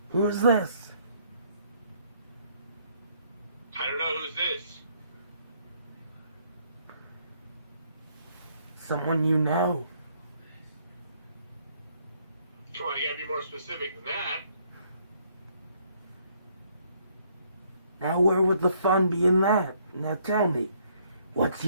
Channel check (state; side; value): inverted; both; correlation -0.67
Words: Who's this? I don't know who's this. Someone you know. Come on, you gotta be more specific than that. Now where would the fun be in that? Now tell me, what's